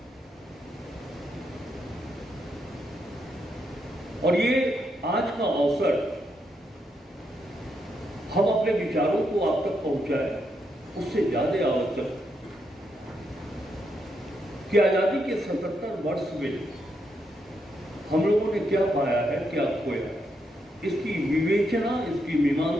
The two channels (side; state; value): both; normal; correlation 0.80